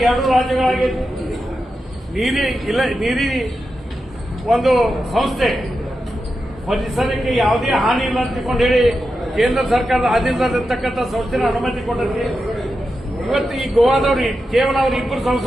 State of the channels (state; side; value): normal; both; correlation 0.89